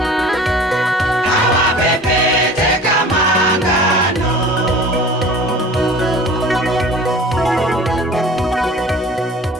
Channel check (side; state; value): both; normal; correlation 0.43